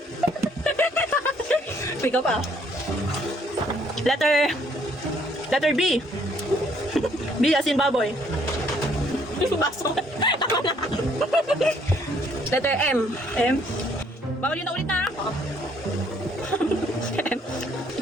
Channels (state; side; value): normal; both; correlation 0.65